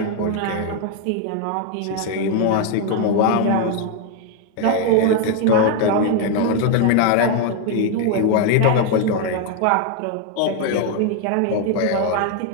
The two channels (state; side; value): different; both; correlation 0.01